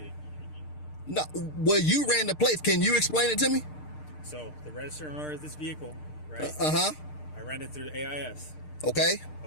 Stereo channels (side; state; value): right; late; 6.6 ms